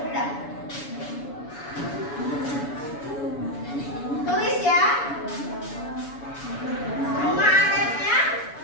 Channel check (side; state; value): right; late; 7.1 ms